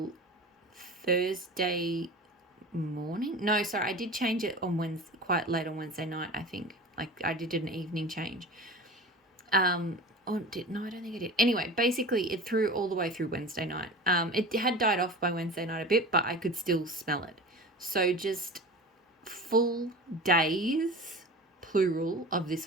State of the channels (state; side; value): normal; both; correlation 0.35